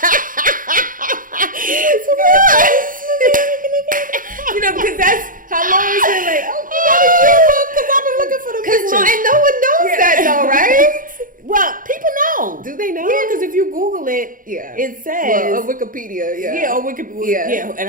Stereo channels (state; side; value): late; left; 0.40 ms